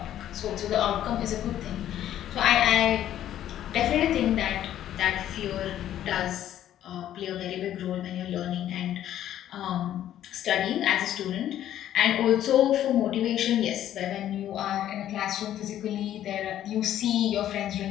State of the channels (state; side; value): quieter; right; 11.7 dB